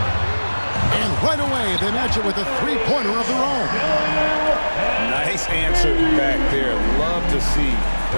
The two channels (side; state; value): both; inverted; correlation -1.00